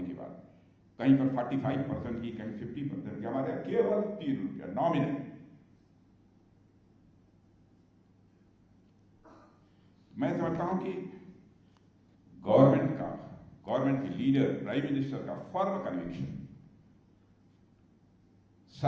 के बाद कहीं पर 45% की, कहीं 50% की, हमारे यहाँ केवल 3 रुपया नॉमिनल। मैं समझता हूं कि गवर्नमेंट के लीडर, प्राइम मिनिस्टर का फर्म कन्विक्शन,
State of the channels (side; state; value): both; identical; correlation 1.00